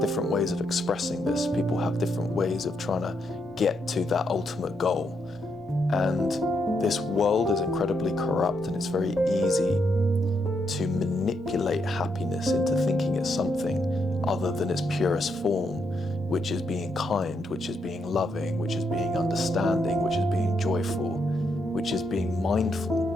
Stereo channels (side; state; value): both; normal; correlation 0.79